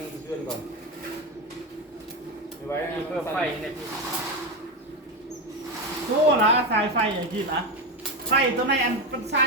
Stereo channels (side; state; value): both; normal; correlation 0.14